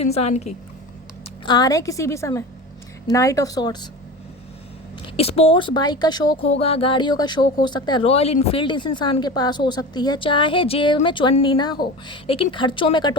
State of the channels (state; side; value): normal; both; correlation 0.30